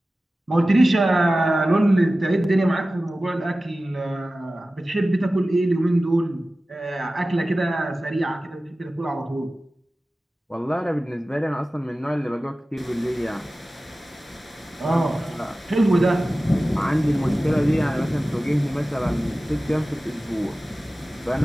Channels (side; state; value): both; normal; correlation 0.96